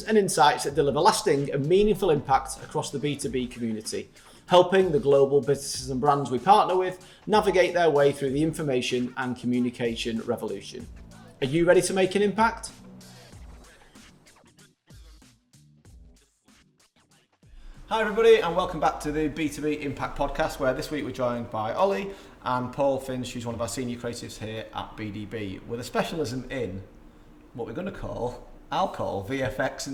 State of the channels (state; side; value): identical; both; correlation 1.00